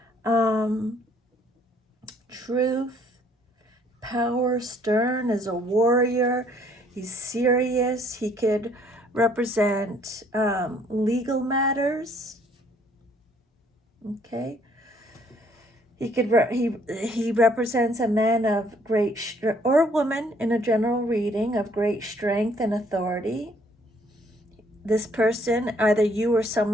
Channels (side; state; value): both; normal; correlation 0.63